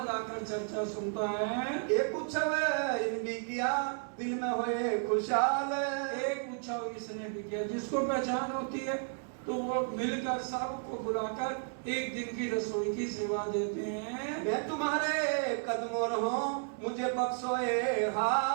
लाकर चर्चा सुनता है। एक उत्सव इनकी किया दिल में हुए खुशहाल। एक उत्सव इसने भी किया, जिसको पहचान होती है तो वो मिलकर सबको बुलाकर एक दिन की रसोई की सेवा देते हैं। मैं तुम्हारे कदमों हूँ मुझे बख्शोए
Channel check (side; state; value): left; silent; 56 dB below the other